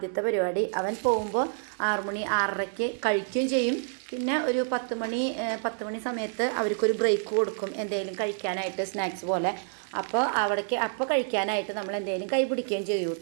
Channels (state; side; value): silent; left; digital silence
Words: പരിപാടി. അവൻ പോകുമ്പോൾ 6 മണി 6:30ക്ക് കഴിക്കുകയും ചെയ്യും. പിന്നെ ഒരു 10 മണി സമയത്ത് അവർക്കൊരു ബ്രേക്ക് കൊടുക്കും, എന്തെങ്കിലും കഴിക്കാനായിട്ട് സ്നാക്സ് പോലെ. അപ്പോൾ കഴിക്കാനായിട്ട് നമ്മൾ എന്തെങ്കിലും കൈ പിടിക്കുകയും ചെയ്യും